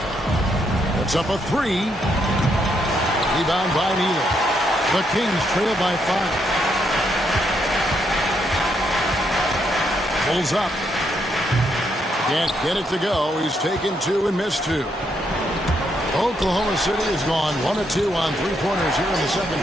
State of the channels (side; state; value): both; normal; correlation 0.76